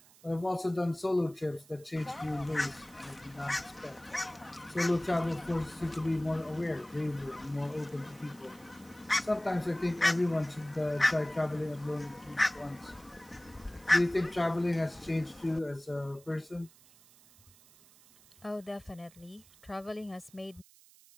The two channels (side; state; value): right; noise; hiss, 25 dB below the sound